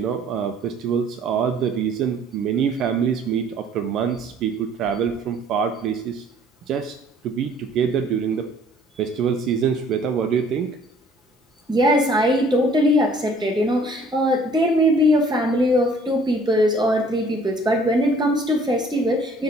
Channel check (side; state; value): both; normal; correlation 0.56